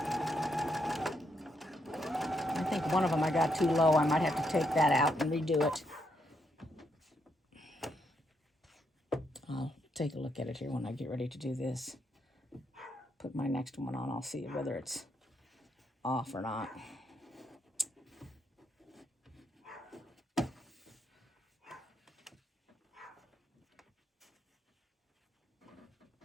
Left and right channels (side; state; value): both; normal; correlation 0.77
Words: I think one of them I got too low. I might have to take that out and redo it. I'll take a look at it here when I get ready to do this. Put my next one on. I'll see whether it's off or not.